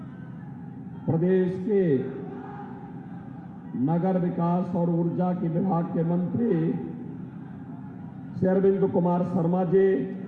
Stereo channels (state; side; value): identical; both; correlation 1.00